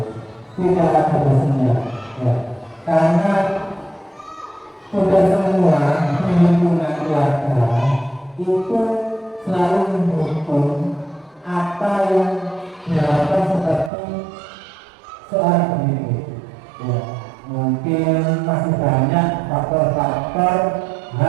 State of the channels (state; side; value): drops out; left; at 13.9 s